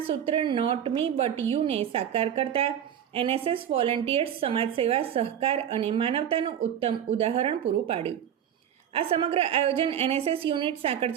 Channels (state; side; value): quieter; left; 9.5 dB